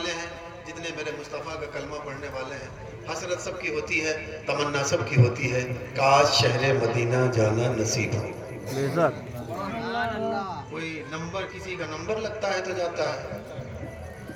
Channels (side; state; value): both; identical; correlation 1.00